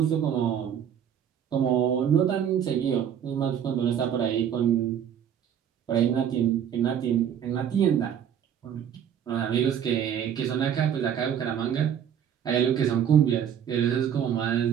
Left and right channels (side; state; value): left; quieter; 9.0 dB